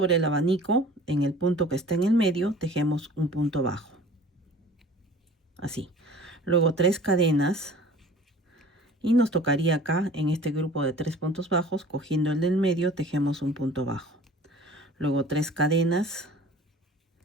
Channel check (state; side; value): normal; both; correlation 0.45